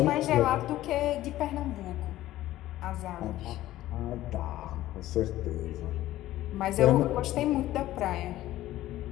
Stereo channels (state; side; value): quieter; right; 14.9 dB